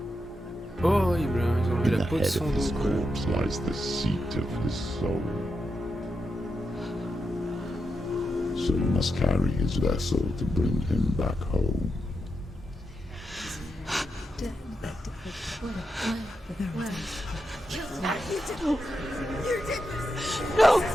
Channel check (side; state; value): both; normal; correlation 0.86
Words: Horrible, hein, ils ont enlevé In la the peau de head son of his dos. corpse lies the seat of his soul. So you must carry his vessel to bring him back home.